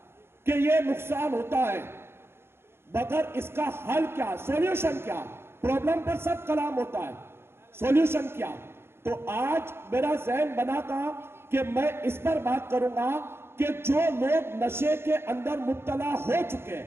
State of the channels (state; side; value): late; left; 0.12 ms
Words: कि ये नुकसान होता है, मगर इसका हल क्या, सॉल्यूशन क्या, प्रॉब्लम पर सब कलाम होता है, सॉल्यूशन क्या। तो आज मेरा ज़हन बना था कि मैं इस पर बात करूंगा कि जो लोग नशे के अंदर मुब्तला हो चुके हैं